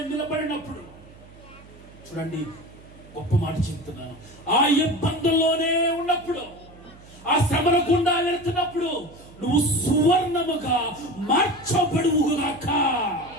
నిలబడినప్పుడు, చూడండి గొప్ప మాట చెప్తున్నాను, ఆ ఇబ్బందుల్లోనే ఉన్నప్పుడు, ఆ శ్రమల గుండా వెళుతున్నప్పుడు నువ్వు సువర్ణముగా మార్చబడువుగాక.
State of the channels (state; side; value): noise; right; hum, 22 dB below the sound